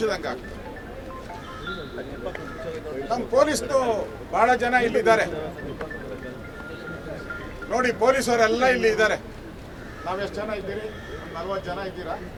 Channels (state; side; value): identical; both; correlation 1.00